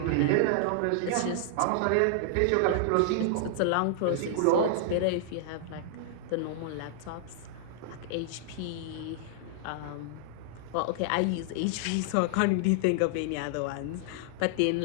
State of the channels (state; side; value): different; both; correlation -0.01